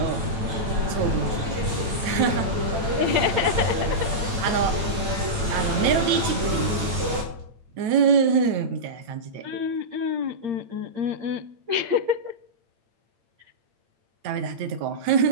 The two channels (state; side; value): late; left; 9.1 ms